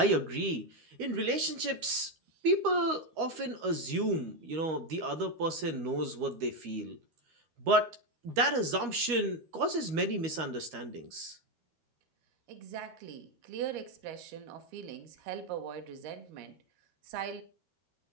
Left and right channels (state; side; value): late; left; 13 ms